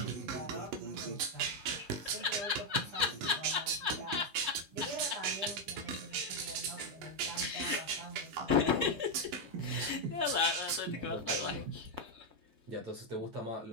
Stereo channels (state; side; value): late; left; 9.1 ms